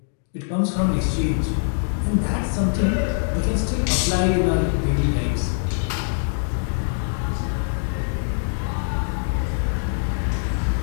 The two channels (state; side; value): silent; right; digital silence